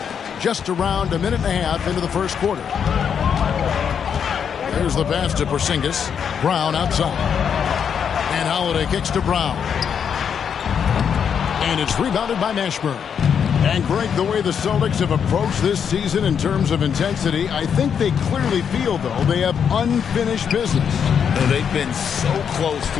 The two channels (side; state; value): right; quieter; 7.5 dB